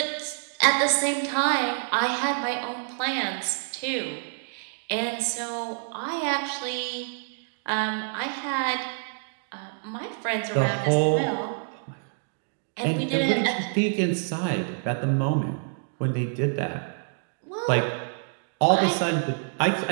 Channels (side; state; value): left; silent; digital silence